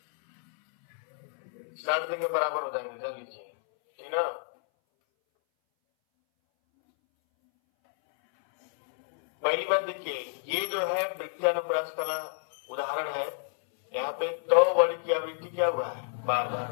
साठ दिन के बराबर हो जाएंगे, जान लीजिए, ठीक ना। पहली बात देखिए, ये जो है वृत्ति अनुप्रास का उदाहरण है। यहाँ पे दो वर्ण की आवृत्ति क्या हुआ है? बार बार।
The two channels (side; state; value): right; silent; 58 dB below the other